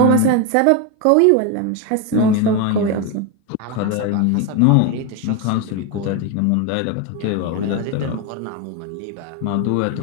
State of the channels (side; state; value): both; different; correlation 0.02